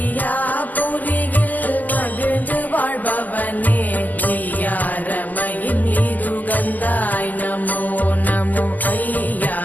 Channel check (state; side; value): late; right; 0.082 ms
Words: புரியில் மகிழ்ந்து வாழ்பவனே மெய்யாரமையின் நீதுகந்தாய் நமோ நமோ ஐயா